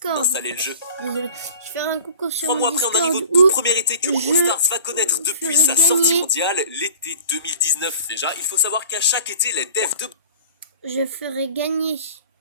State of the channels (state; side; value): inverted; both; correlation -0.42